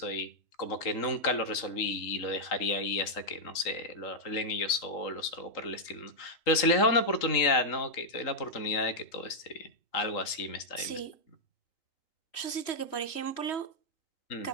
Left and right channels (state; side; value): late; right; 3.8 ms